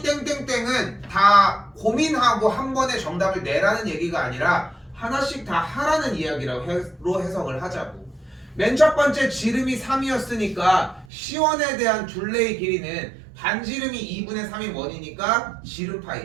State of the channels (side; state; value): left; drops out; at 11.1 s